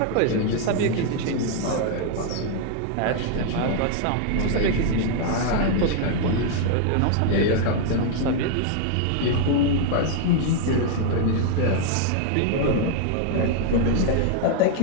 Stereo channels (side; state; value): both; different; correlation 0.00